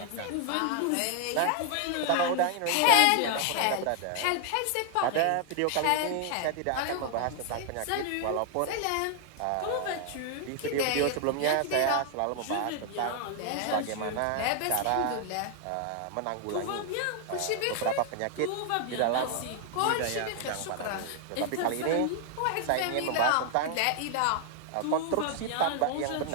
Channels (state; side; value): different; both; correlation 0.00